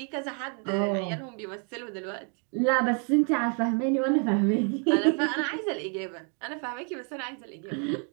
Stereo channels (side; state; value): left; quieter; 39.8 dB